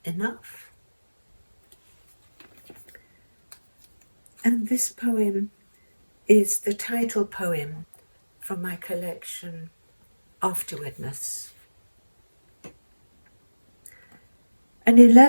enough? And this poem is the title poem from my collection, Afterwardness. An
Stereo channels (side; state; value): both; inverted; correlation -1.00